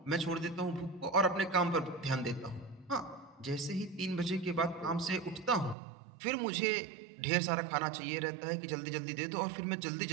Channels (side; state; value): left; drops out; at 5.8 s